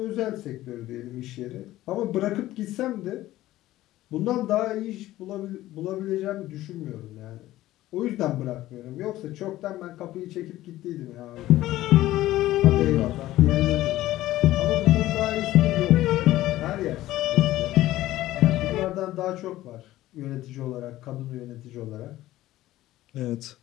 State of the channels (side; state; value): right; quieter; 15.5 dB